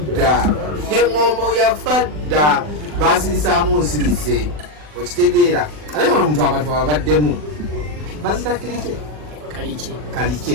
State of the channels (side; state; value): left; late; 40 ms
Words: engombo yafadda basirisaamu nsirise okitegeera ate ono omuntu abantu ababaddemu bazita